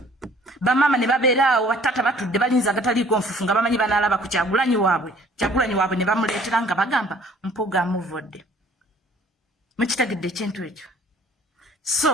bamama ne babeeraawo batata batudde balinza agataliiko nfufu nga bamanyi banaalaba ku Kyagulanyi waabwe ne bamuleetera nga bagamba Mpuga amuvodde. Mukitegedde ekintu ekyo.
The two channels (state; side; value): normal; both; correlation 0.55